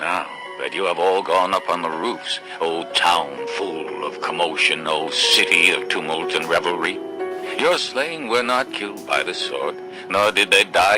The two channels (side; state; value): both; identical; correlation 1.00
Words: that you have all gone up on the roofs, O town full of commotion, O city of tumult and revelry? Your slain were not killed by the sword, nor did they